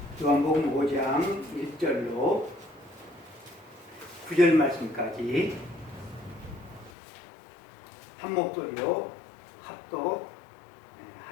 요한복음 5장 1절로 9절 말씀까지 한 목소리로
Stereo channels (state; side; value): drops out; right; at 6.9 s